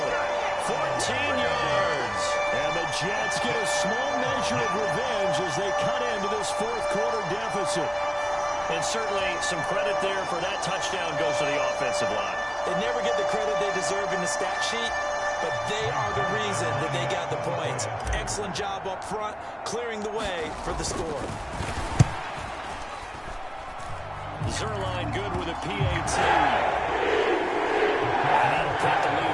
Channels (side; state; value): both; identical; correlation 1.00